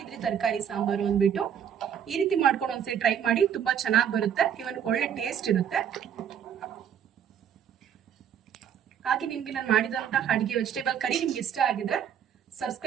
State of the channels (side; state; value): left; quieter; 8.7 dB